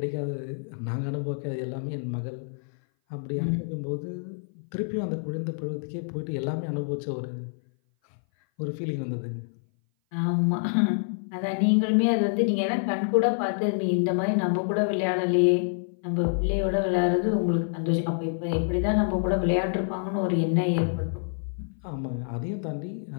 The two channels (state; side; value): silent; right; 57 dB below the other